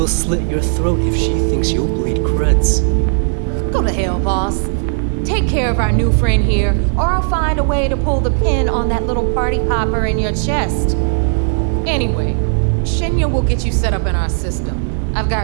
slit your throat if she thinks you'll bleed creds. Go to hell, boss. Take care of our new friend here, or I'll find a way to pull the pin on that little party popper in your chest. Anyway, Shinya will get you set up in our system. I've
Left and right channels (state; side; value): silent; left; digital silence